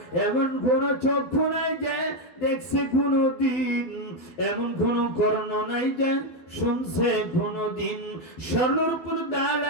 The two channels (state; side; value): late; right; 12 ms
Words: এমন কোন চক্ষু নাই যে দেখছে কোনদিন, এমন কোন কর্ণ নাই যে শুনছে কোনদিন। স্বর্ণপুর